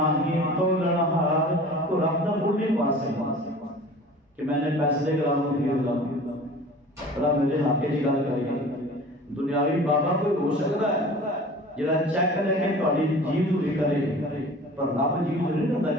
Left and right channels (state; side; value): normal; both; correlation 0.42